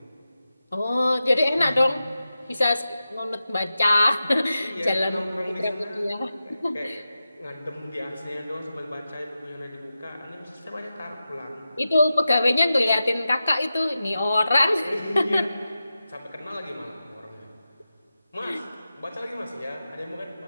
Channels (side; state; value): both; inverted; correlation -0.92